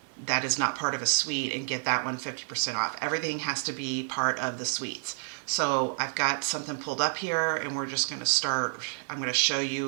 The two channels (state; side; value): silent; left; digital silence